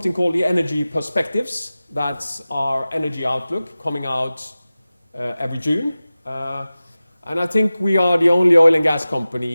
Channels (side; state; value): both; inverted; correlation -0.97